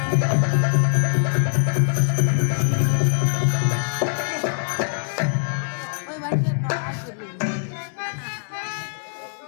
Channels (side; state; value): right; silent; 61 dB below the other